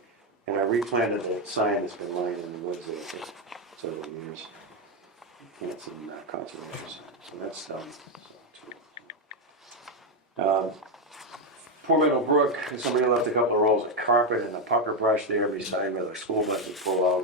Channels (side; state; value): both; normal; correlation 0.06